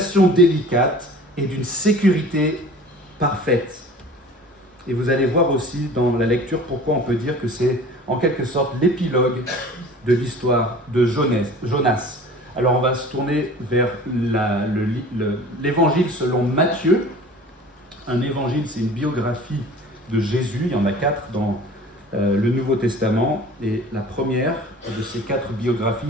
délicate et d'une sécurité parfaite. Et vous allez voir aussi dans la lecture pourquoi on peut dire que c'est en quelque sorte l'épilogue de l'histoire de Jonas. Alors on va se tourner vers l'évangile selon Matthieu. Un évangile, c'est une biographie de Jésus. Il y en a 4 dans le Nouveau Testament. Et la première de ces 4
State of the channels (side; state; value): both; normal; correlation 0.43